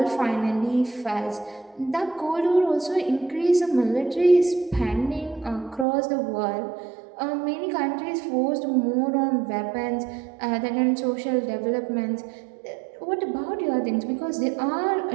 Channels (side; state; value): left; drops out; at 5.9 s